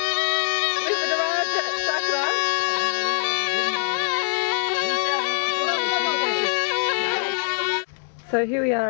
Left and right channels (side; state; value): right; silent; 63 dB below the other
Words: So here we are